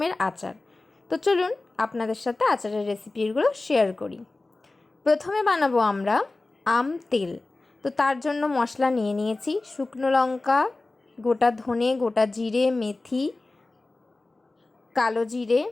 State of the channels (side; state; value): right; quieter; 3.2 dB